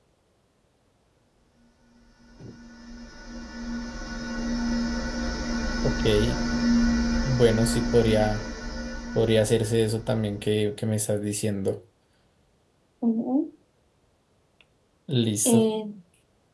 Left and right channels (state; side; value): identical; both; correlation 1.00